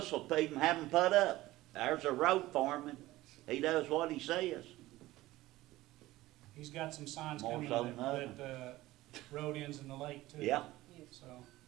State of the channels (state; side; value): quieter; left; 17.3 dB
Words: will even have them put up. There's a road foreman. He does what he says. He's got some signs More coming so than that road ends in the lake too. Yeah. So,